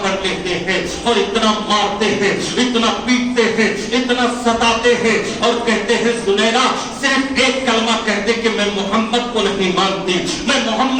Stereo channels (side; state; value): both; identical; correlation 1.00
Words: लेते हैं और इतना मारते हैं, इतना पीटते हैं, इतना सताते हैं और कहते हैं सुनैरा सिर्फ एक कलमा कह दे कि मैं मोहम्मद को नहीं मानती, मैं